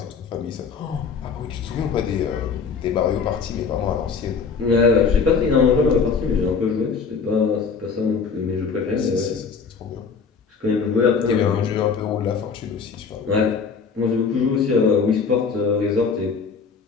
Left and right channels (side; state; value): right; quieter; 5.5 dB